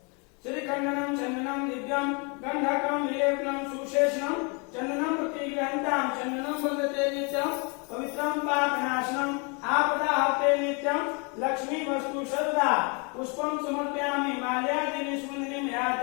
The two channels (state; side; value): quieter; right; 33.2 dB